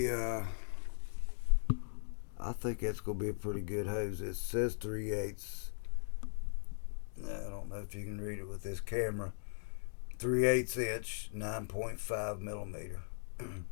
I think that's going to be a pretty good hose. It says 3/8. I don't know if you can read it with this camera. 3/8 inch, 9.5 millimeter.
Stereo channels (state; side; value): silent; right; digital silence